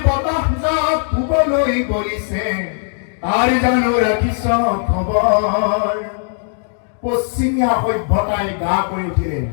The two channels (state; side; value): silent; right; digital silence